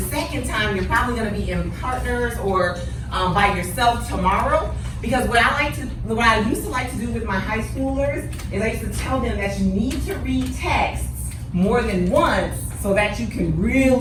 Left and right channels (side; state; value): both; identical; correlation 1.00